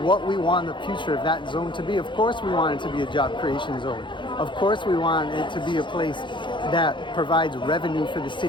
what we want the future of that zone to be. Of course, we want it to be a job creation zone. Of course, we want it to be a place that provides revenue for the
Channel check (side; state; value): right; late; 0.23 ms